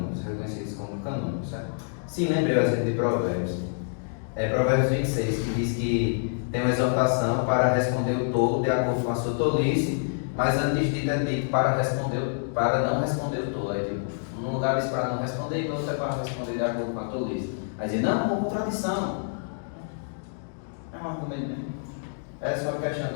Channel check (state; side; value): silent; right; digital silence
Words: reconhecidos como canônicos, certo? Sim, lembrei o exemplo de Provérbios. Provérbios 26, que diz que tem uma exortação para responder o tolo de acordo com a sua tolice, mas antes de é dito para não responder o tolo. Tipo, num lugar diz para não responder e no outro é para responder de acordo com a tolice. Aí diz, não, uma contradição. É um argumento mesmo. É só uma questão